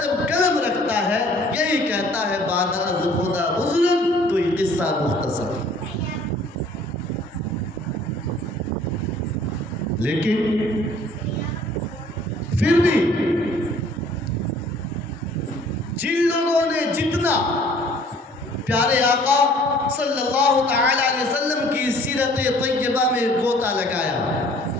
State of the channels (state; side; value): normal; both; correlation 0.55